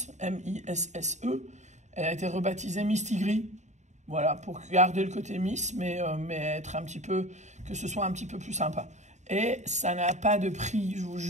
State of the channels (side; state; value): left; late; 0.34 ms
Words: M-I-S-S-E. Elle a été rebaptisée Miss Tigri. Voilà, pour garder le côté Miss, mais être un petit peu, que ce soit un petit peu plus sympa. Et ça n'a pas de prix, je vous